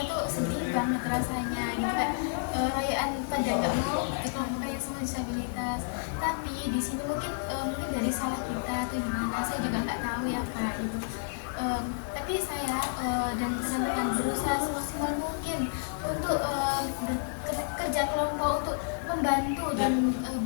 tuh sedih banget rasanya gitu kan, rayaan pada nggak mau di kelompok kayak semua disabilitas. Tapi di sini mungkin dari salah kita atau gimana, saya juga nggak tahu ya Kak gitu. Tapi saya dan teman-teman berusaha semaksimal mungkin untuk kerja kelompok untuk membantu dan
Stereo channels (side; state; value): right; silent; digital silence